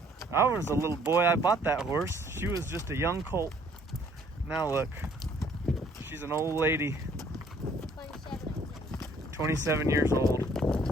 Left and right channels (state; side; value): normal; both; correlation 0.61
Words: I was a little boy, I bought that horse. She was just a young colt. Now look, she's an old lady. 27 years old.